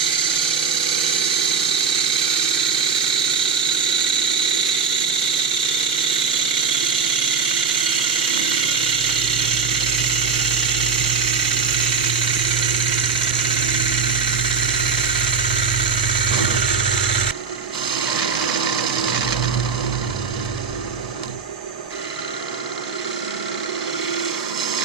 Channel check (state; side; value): quieter; left; 5.7 dB